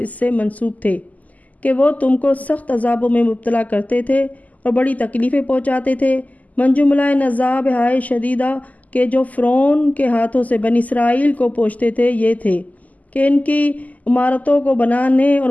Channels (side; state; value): right; late; 0.077 ms